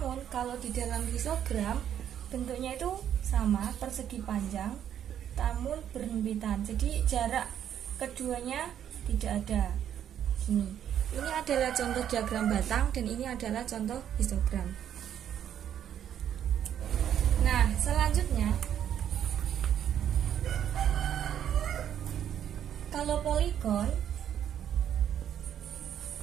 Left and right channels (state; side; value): quieter; left; 9.8 dB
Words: kalau di dalam histogram, bentuknya itu sama, persegi panjang, namun berhimpitan. Jadi, jarak keduanya tidak ada. Ini adalah contoh diagram batang dan ini adalah contoh histogram. Nah, selanjutnya kalau poligon